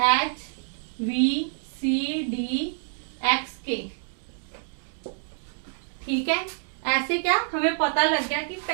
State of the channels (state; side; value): silent; left; digital silence